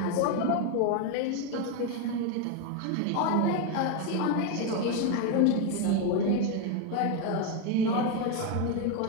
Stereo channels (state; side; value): different; both; correlation 0.02